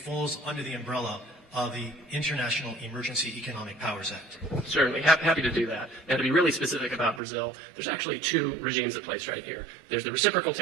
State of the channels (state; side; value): drops out; left; at 7.2 s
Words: under the umbrella of the International Emergency Economic Powers Act? Certainly, happy to do that. And to be really specific about Brazil, there's actually two regimes at place right here. There's the reciprocal